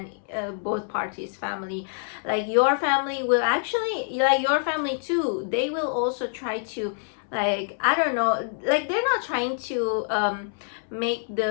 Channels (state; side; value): silent; right; 61 dB below the other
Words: both parties family. Like your family will actually, like your family too, they will also try to, like, I don't know, like they're not trying to make